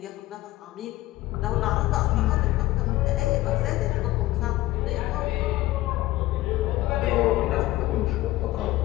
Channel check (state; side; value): quieter; right; 17.0 dB